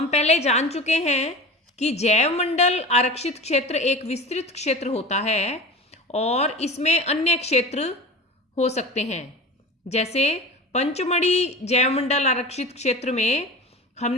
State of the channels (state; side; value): normal; both; correlation 0.33